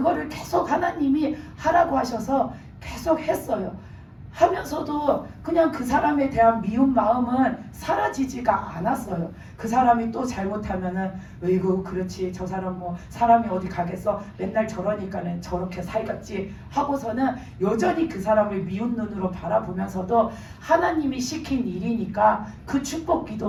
계속 하나님이 하라고 하셔서 계속 했어요. 하면서도 그냥 그 사람에 대한 미운 마음은 사라지지가 않았어요. 그 사람이 또 잘못하면은 으이구 그렇지 저 사람 뭐 사람이 어디 가겠어 맨날 저러니까는 저렇게 살겠지 하고서는 여전히 그 사람을 미운 눈으로 바라보면서도 하나님이 시킨 일이니까 그 축복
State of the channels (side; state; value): both; identical; correlation 1.00